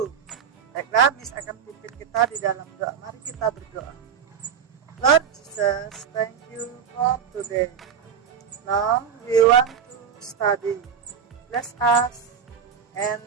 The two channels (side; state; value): left; quieter; 7.4 dB